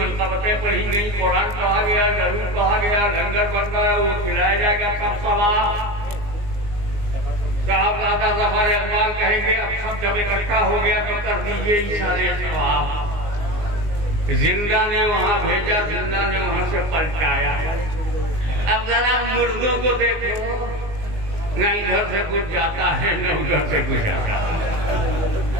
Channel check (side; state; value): left; late; 19 ms